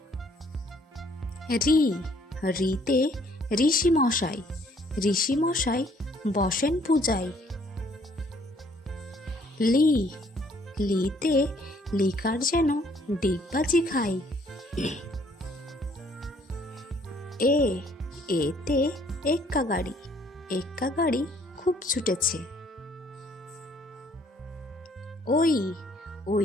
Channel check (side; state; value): both; normal; correlation 0.63